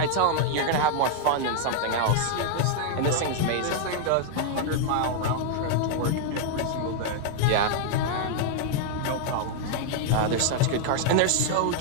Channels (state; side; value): different; both; correlation 0.00